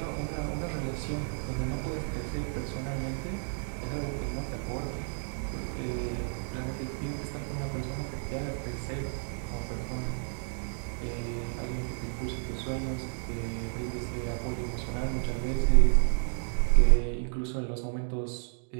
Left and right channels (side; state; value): left; silent; 57 dB below the other